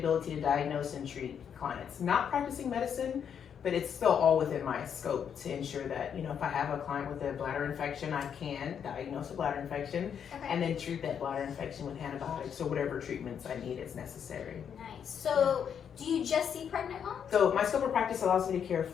to diagnose and treat clients. Not practicing medicine, but it's still all within my scope to ensure that, you know, if I have a client with a bladder infection, I can diagnose a bladder infection Okay. and then treat that bladder infection with antibiotics or whatever treatments I need as necessary. Nice. So, do you just see pregnant moms? So my scope of practice allows me to care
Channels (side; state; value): right; quieter; 7.9 dB